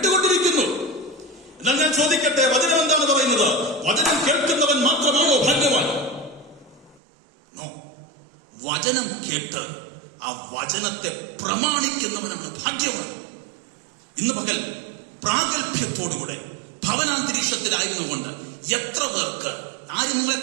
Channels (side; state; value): left; drops out; at 7.0 s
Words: എന്നാൽ ഞാൻ ചോദിക്കട്ടെ, വചനം എന്താണ് പറയുന്നത്? വചനം കേൾക്കുന്നവൻ മാത്രമാണോ ഭാഗ്യവാൻ? നോ. വചനം കേട്ട് ആ വചനത്തെ പ്രമാണിക്കുന്നവനാണ് ഭാഗ്യവാൻ. ഇന്ന് പകൽ പ്രാഗൽഭ്യത്തോടുകൂടെ ഭവനാന്തരീക്ഷത്തിലായിരുന്നുകൊണ്ട് എത്ര പേർക്ക്, ആരും നിങ്ങളെ